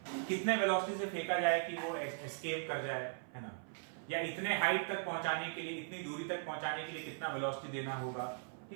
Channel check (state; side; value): silent; left; 52 dB below the other